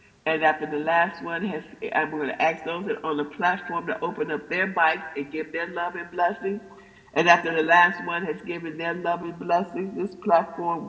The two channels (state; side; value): identical; both; correlation 1.00